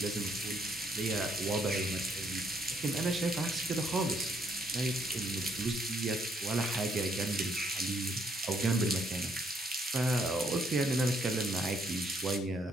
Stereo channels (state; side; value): normal; both; correlation 0.70